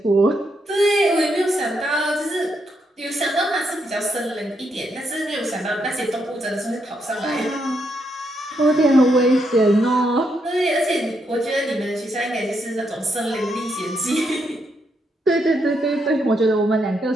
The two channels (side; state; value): both; normal; correlation 0.79